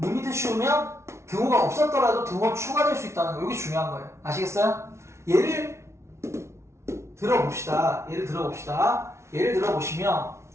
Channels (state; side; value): late; left; 0.13 ms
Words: 씌우면 등호가 없었더라도 등호 추가될 수 있다는 거. 이게 중요한 거예요. 아시겠어요? 예를 들어봅시다. 예를 들어보시면